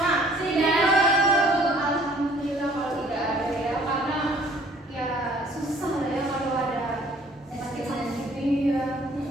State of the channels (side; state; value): both; normal; correlation 0.56